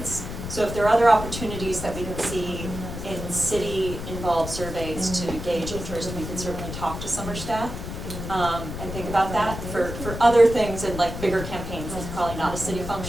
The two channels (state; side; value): noise; left; rumble, 7 dB below the sound